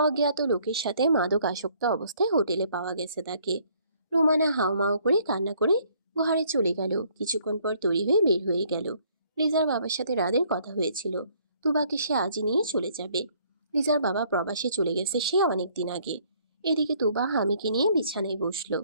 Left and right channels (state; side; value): inverted; both; correlation -0.63